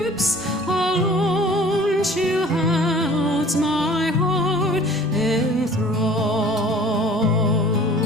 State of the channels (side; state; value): both; normal; correlation 0.49